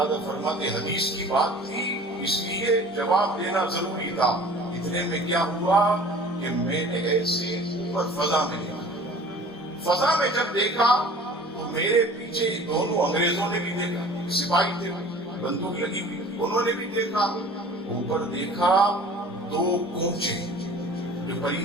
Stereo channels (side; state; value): both; normal; correlation 0.45